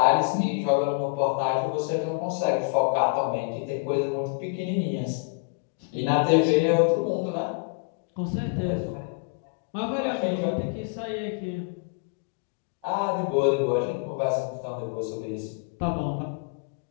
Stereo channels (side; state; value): right; quieter; 32.5 dB